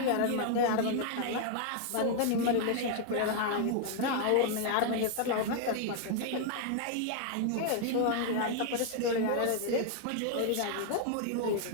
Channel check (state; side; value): different; both; correlation 0.00